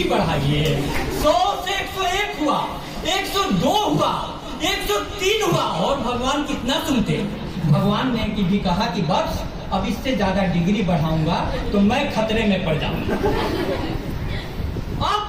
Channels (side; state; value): both; identical; correlation 1.00